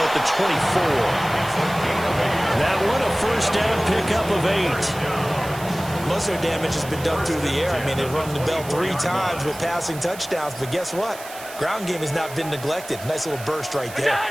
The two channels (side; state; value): right; noise; hiss, 15 dB below the sound